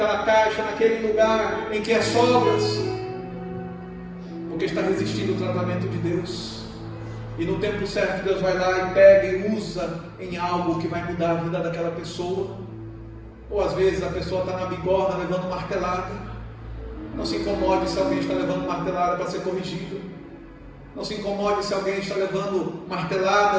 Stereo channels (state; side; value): identical; both; correlation 1.00